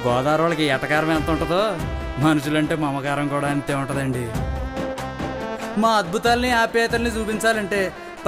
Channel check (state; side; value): identical; both; correlation 1.00